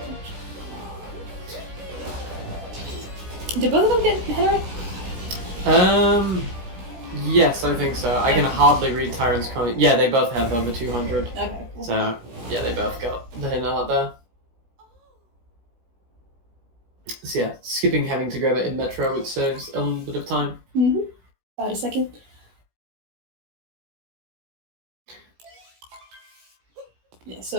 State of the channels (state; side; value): late; left; 17 ms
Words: Did both of them get hit right? Yes, I think so. I can hardly read Tyron's comment. Yeah, they both have over 200. Okay, cool. So, yeah, they both got the hit out there. So yeah, skipping having to grab it in Metro, which saves a little bit of time. Mm-hmm. About a second. Yeah,